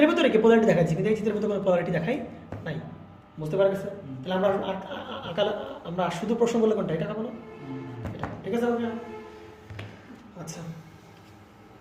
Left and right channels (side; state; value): both; identical; correlation 1.00